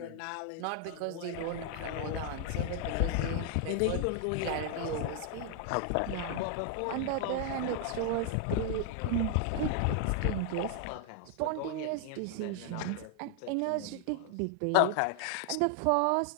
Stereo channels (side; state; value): both; different; correlation 0.00